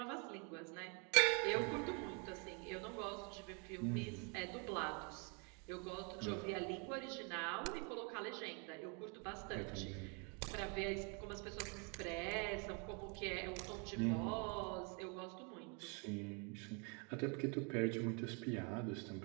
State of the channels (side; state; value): left; quieter; 35.3 dB